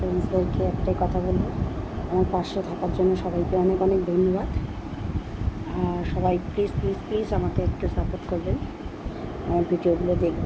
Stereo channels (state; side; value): identical; both; correlation 1.00